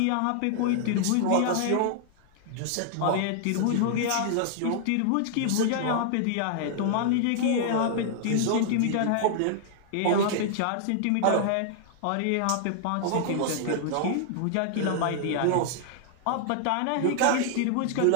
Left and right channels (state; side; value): different; both; correlation -0.01